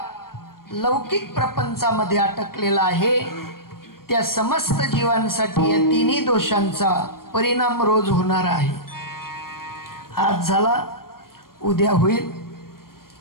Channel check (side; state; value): right; late; 0.93 ms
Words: लौकिक प्रपंचामध्ये अटकलेला आहे, त्या समस्त जीवांसाठी या तिन्ही दोषांचा परिणाम रोज होणार आहे. आज झाला, उद्या होईल,